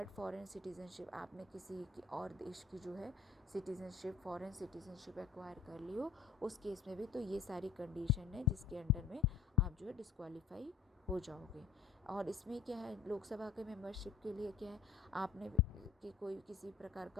फॉरेन सिटीजनशिप, आपने किसी की और देश की जो है सिटीजनशिप, फॉरेन सिटीजनशिप एक्वायर कर ली हो, उस केस में भी तो ये सारी कंडीशन है जिसके अंडर में आप जो है डिस्क्वालीफाई हो जाओगे। और इसमें क्या है, लोकसभा के मेंबरशिप के लिए क्या है, आपने कि कोई किसी प्रकार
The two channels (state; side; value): quieter; right; 5.8 dB